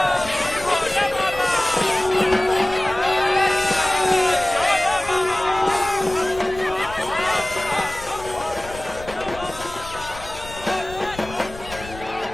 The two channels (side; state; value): left; noise; rumble, 15 dB below the sound